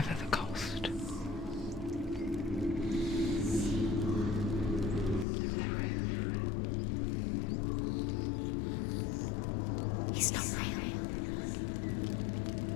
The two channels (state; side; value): drops out; right; at 5.2 s